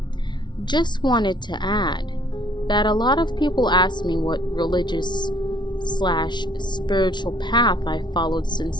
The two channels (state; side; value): late; right; 0.22 ms